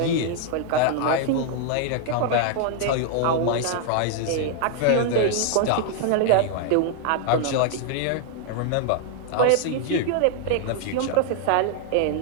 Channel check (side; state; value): both; different; correlation 0.00